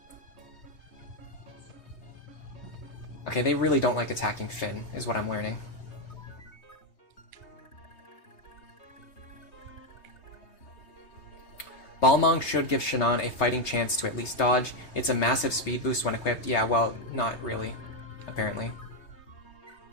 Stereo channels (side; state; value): right; late; 3.3 ms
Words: Okay, they really don't like attacking Finn, is what I'm learning. Balmong should give Shannon a fighting chance to at least dodge. It's a massive speed boost when equipped. Yeah, well, not really, apparently.